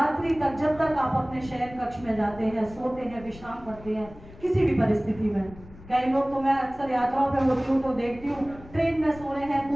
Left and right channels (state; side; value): noise; left; rumble, 19 dB below the sound